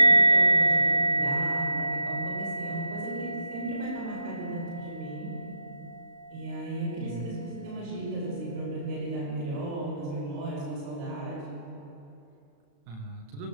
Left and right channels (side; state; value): left; late; 35 ms